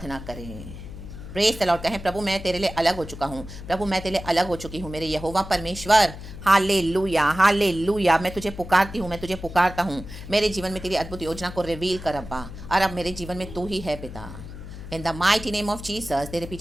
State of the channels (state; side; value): noise; left; hum, 12 dB below the sound